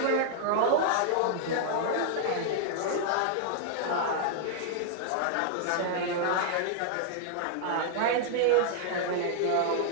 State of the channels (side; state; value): both; different; correlation -0.01